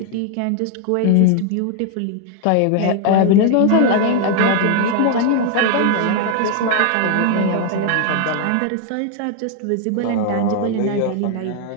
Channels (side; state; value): both; different; correlation 0.00